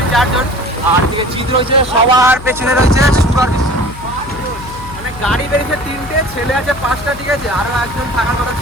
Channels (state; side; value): noise; left; hum, 15 dB below the sound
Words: 4 জন। আর দিকে চিত্র রয়েছে, সবার পেছনে রয়েছে সুগার বিশ্ব। মানে গাড়ি বেরিয়েছে 3টে, ছেলে আছে 5টা, ঠিক আছে? আরো একজন থাকার কথা